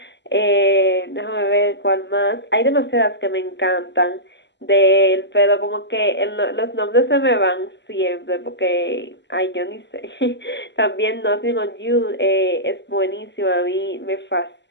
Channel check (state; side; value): late; right; 0.51 ms